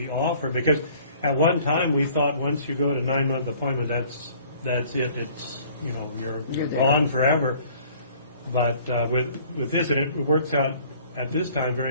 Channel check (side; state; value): both; inverted; correlation -0.54